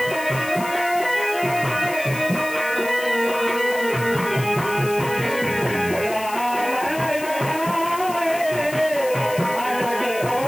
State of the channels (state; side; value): noise; left; hiss, 13 dB below the sound